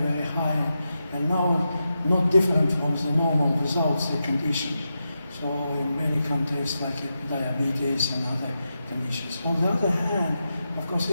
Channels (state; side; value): inverted; both; correlation -0.88